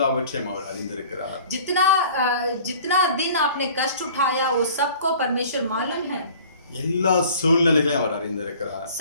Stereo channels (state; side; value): inverted; both; correlation -0.48